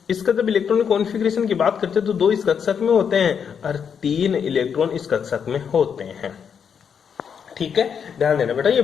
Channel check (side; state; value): right; quieter; 7.2 dB